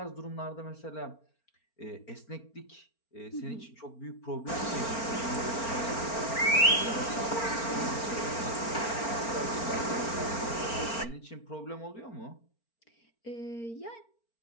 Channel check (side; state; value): right; late; 4.4 ms